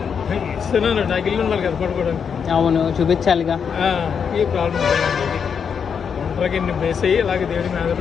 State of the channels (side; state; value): right; quieter; 6.8 dB